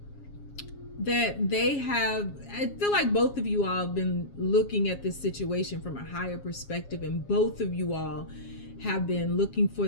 that they have. I feel like both of you all have been looking at this situation from a higher perspective, and both of you all have been looking for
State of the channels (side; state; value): right; late; 7.3 ms